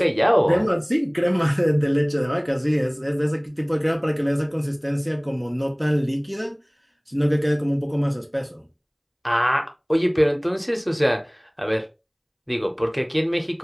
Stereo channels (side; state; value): both; identical; correlation 1.00